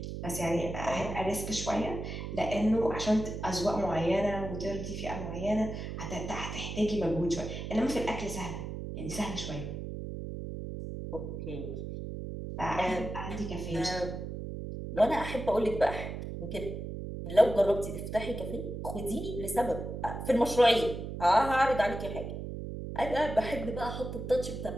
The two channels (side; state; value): right; noise; hum, 6 dB below the sound